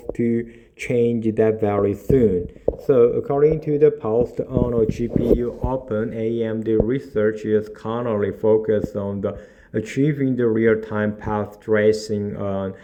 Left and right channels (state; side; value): identical; both; correlation 1.00